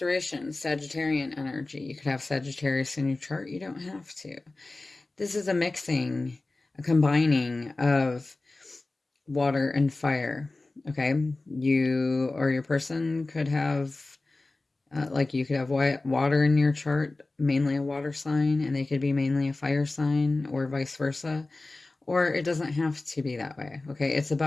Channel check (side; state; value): right; quieter; 3.2 dB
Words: Sagittarian energy. You could have Sagittarius in your chart. You don't have to. This is a mixing, a combining of water and fire. Okay, you or your person could have Like you could have water in your chart, mainly a water sign, and they could be mainly a fire sign, or vice versa. Or it doesn't have to be that way, okay? It's